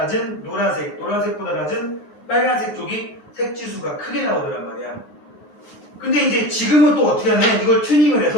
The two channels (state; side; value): late; right; 9.6 ms